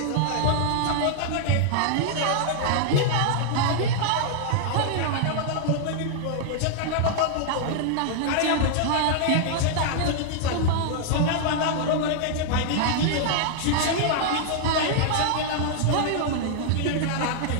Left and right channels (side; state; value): both; different; correlation -0.01